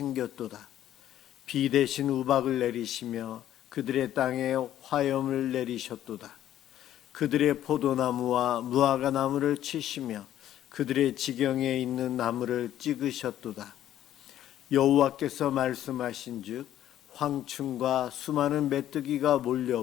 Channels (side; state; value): right; quieter; 12.0 dB